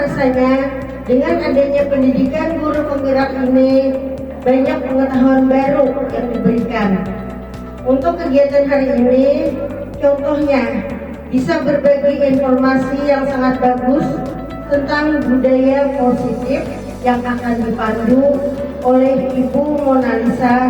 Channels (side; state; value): both; identical; correlation 1.00